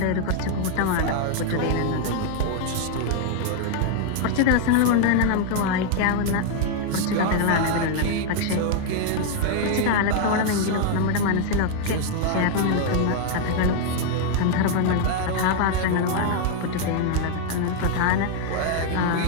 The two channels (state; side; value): different; both; correlation 0.00